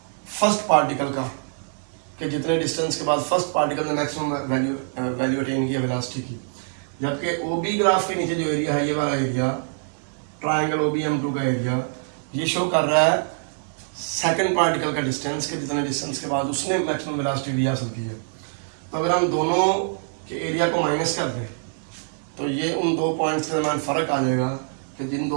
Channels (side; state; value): left; silent; digital silence